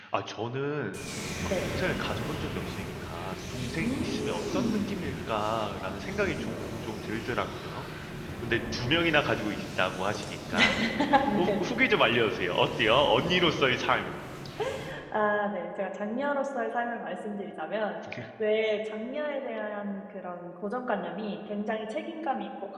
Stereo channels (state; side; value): identical; both; correlation 1.00